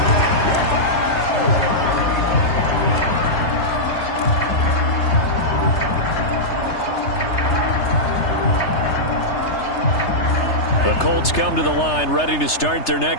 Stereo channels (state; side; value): late; right; 3.3 ms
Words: The Colts come to the line ready to start their